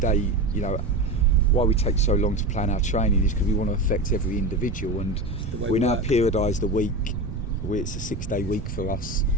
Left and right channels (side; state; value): right; noise; rumble, 6 dB below the sound